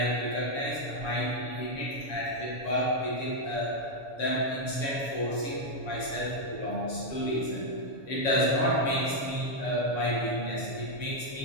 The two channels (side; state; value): right; late; 7.2 ms